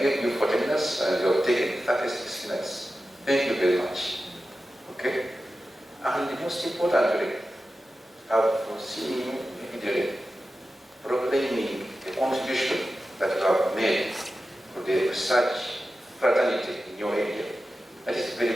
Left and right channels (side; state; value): both; normal; correlation 0.93